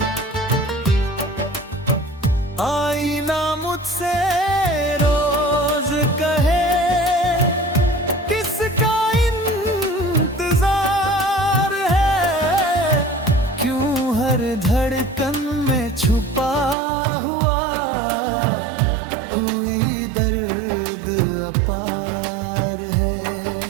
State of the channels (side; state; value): left; drops out; at 16.8 s